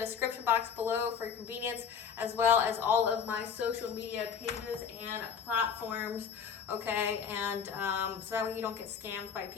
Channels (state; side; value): quieter; right; 6.9 dB